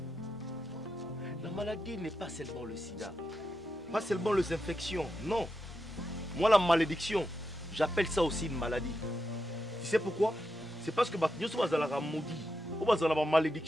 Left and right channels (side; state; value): both; normal; correlation 0.86